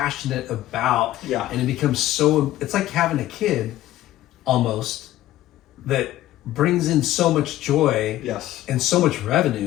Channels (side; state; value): right; quieter; 14.6 dB